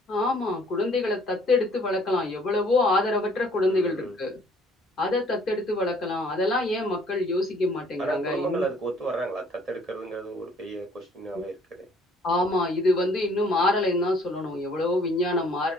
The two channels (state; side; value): normal; both; correlation 0.59